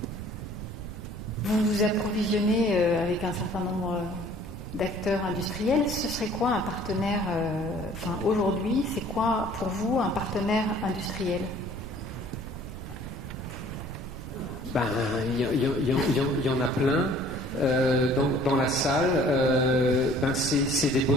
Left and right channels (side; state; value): right; noise; rumble, 9 dB below the sound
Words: Vous vous approvisionnez avec un certain nombre d'acteurs industriels. Ce serait quoi un partenaire, aujourd'hui, c'est quoi pour vous un partenaire industriel? Il y en a plein dans la salle. C'est des